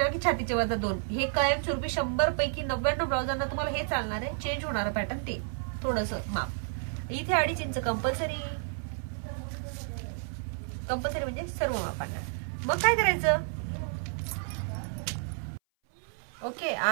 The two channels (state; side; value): silent; left; 57 dB below the other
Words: की छातीचे वजा 2 हे कायमस्वरूपी 100 पैकी 99 ब्लाउजांना तुम्हाला हे चालणार आहे. चेंज होणारं पॅटर्न ते थोडस माप. इथे 2.5 इंच कंपल्सरी म्हणजे सर्व मापांना. मग काय करायचं? ओके,